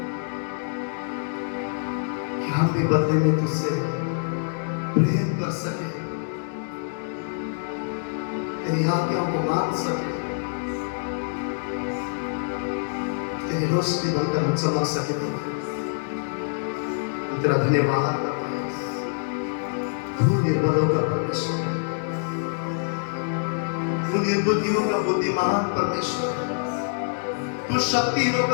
कि हम भी बदले में तुझसे प्रेम कर सके, तेरी आज्ञाओं को मान सके, तेरी रोशनी बनकर हम चमक सके प्रभु। तेरा धन्यवाद करते हैं, तू निर्बलों का परमेश्वर है, तू निर्बुद्धियों का बुद्धिमान परमेश्वर है, तू शक्तिहीनों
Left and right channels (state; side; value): silent; right; digital silence